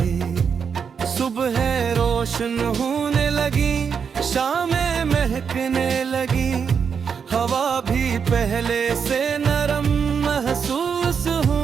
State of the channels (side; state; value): left; quieter; 6.6 dB